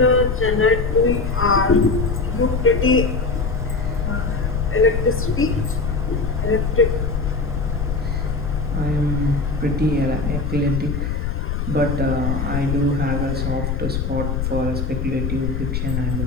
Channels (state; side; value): noise; left; rumble, 1 dB below the sound